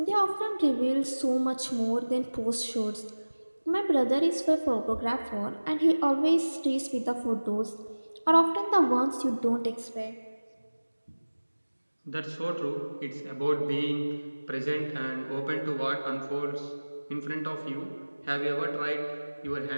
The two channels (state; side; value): inverted; both; correlation -1.00